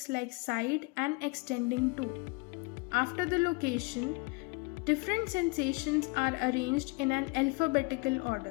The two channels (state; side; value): quieter; right; 27.9 dB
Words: like side and extending to. After the location, different sensations are arranged in an alphabetical